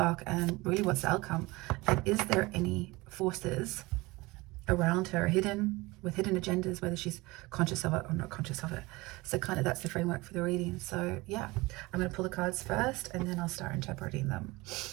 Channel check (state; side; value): quieter; left; 22.3 dB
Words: And really, what's the outcome? And is there any forces around her hidden with hidden agendas, whether she's conscious of it or not conscious of it? So kind of that's the framework for the reading. So yeah, I'm going to pull the cards first and then I'll start interpreting them.